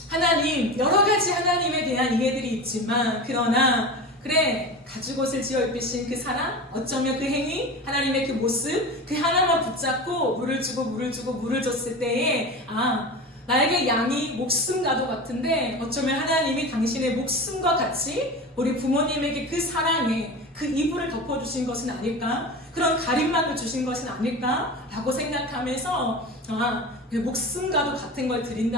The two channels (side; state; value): both; normal; correlation 0.29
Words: 하나님, 여러 가지 하나님에 대한 이해들이 있지만 그러나 그래 가죽옷을 지어 입으신 그 사랑, 어쩌면 그 행위, 하나님의 그 모습, 그 하나만 붙잡고 물을 줬을 때에 나에게 양이 목숨과도 같은데 어쩌면 하나님이 당신의 목숨과 같이 우리 부모님에게 그 사랑에 그 이불을 덮어주신 것은 아닐까? 그런 가림막을 주신 것은 아닐까? 라고 생각하면서 내 목숨과도 같은 걸